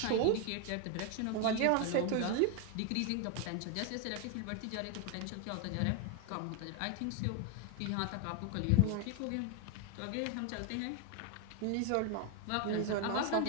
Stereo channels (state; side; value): different; both; correlation 0.01